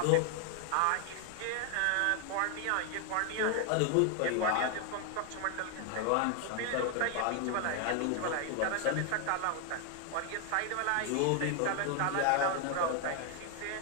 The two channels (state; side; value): different; both; correlation 0.00